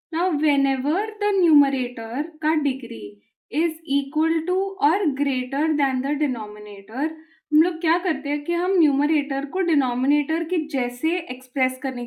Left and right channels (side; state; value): both; identical; correlation 1.00